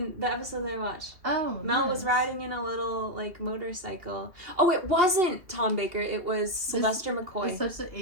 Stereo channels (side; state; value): left; late; 2.7 ms